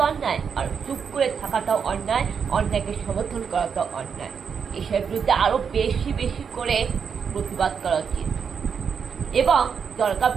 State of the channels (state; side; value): quieter; left; 6.6 dB